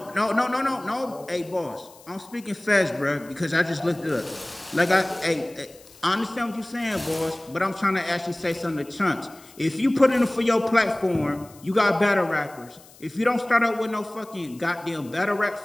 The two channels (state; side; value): noise; left; hiss, 24 dB below the sound